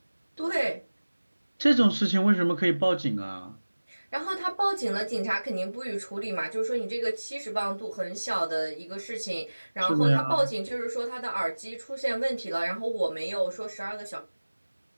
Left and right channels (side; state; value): both; inverted; correlation -1.00